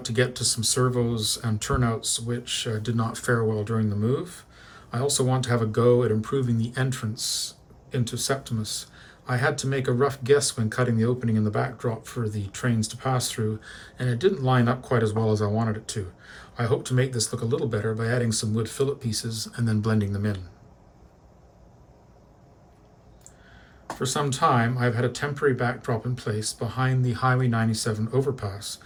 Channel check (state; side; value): identical; both; correlation 1.00